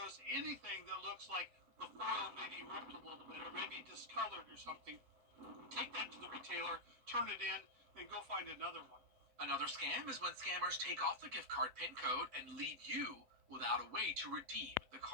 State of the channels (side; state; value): left; late; 8.0 ms